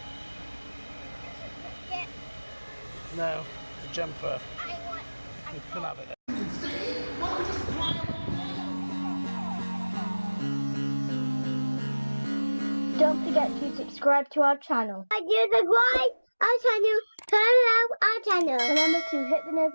No, the jumper. You can have it. Don't forget to subscribe to our channel. Subscribe our channel. Turn on our channel. Remember to hit the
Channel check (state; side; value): inverted; both; correlation -1.00